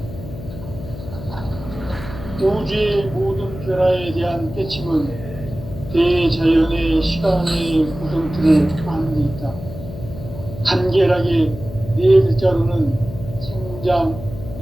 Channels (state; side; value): noise; left; hum, 12 dB below the sound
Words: 우주의 모든 변화에 대한 깨침은 대자연의 시간의 구성틀을 아는 데 있다. 간결하게 네 글자로는 생장,